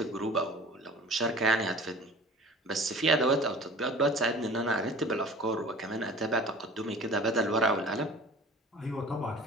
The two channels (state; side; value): normal; both; correlation 0.42